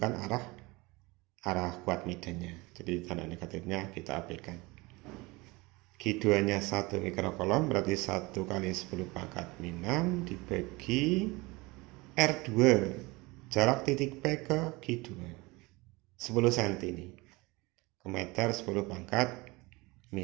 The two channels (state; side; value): quieter; left; 23.6 dB